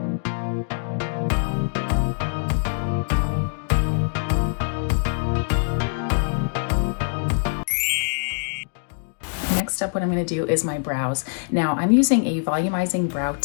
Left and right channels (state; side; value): silent; right; digital silence